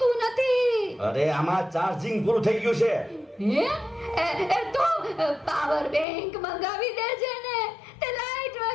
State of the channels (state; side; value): drops out; right; at 6.1 s